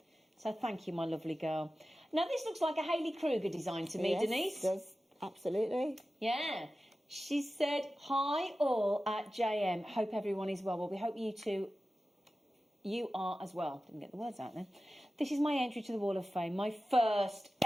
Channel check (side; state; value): both; normal; correlation 0.94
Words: So thank you, my lovely girl. Now this looks like a Hayley Kruger design to me, Yes, Denise. It does. Absolutely. Yeah. She said, hi all at JM. Hope everyone is well. Well, we hope you are as well. Didn't get the words out then. This is my entry to the Wall of Fame. My first